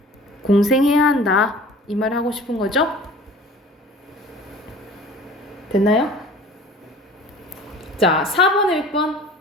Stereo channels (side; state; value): both; normal; correlation 0.44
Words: 공생해야 한다. 이 말 하고 싶은 거죠? 됐나요? 자, 4번에 몇 번?